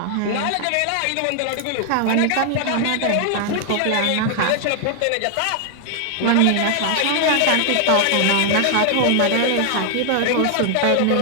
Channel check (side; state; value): both; different; correlation 0.00